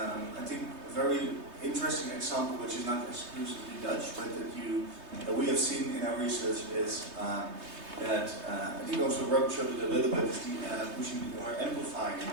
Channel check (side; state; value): left; late; 3.2 ms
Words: I think a very interesting example, which is not exclusively Dutch, but that we have seen in our research is that I think also Rob showed it a little bit, is the pushing or amplifying,